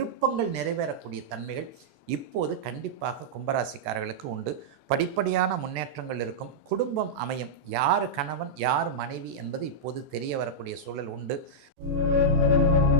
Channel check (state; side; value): late; left; 36 ms